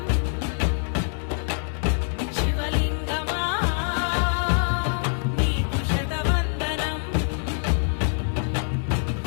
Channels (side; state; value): right; silent; 62 dB below the other